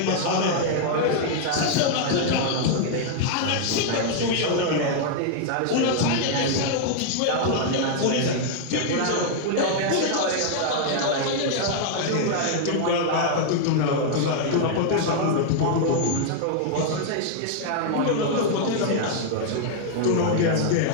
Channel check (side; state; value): both; different; correlation 0.00